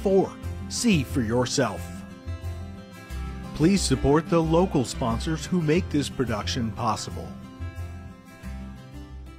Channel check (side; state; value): both; identical; correlation 1.00